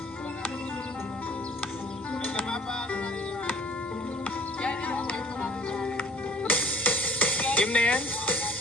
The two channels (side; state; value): both; normal; correlation 0.53